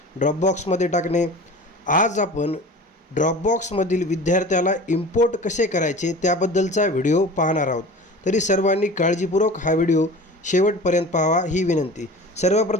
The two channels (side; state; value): both; normal; correlation 0.38